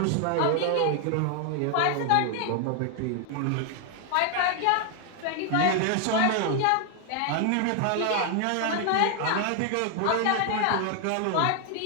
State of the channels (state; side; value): different; both; correlation 0.00